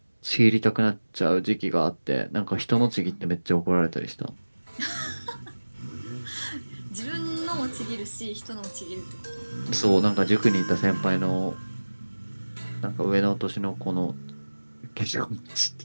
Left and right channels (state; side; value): inverted; both; correlation -1.00